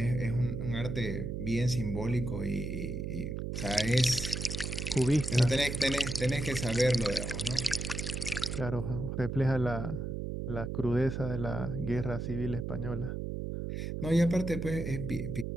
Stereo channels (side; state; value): right; noise; hum, 4 dB below the sound